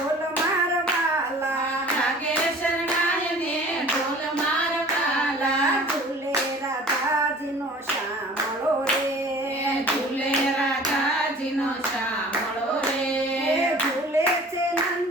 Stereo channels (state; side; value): normal; both; correlation 0.46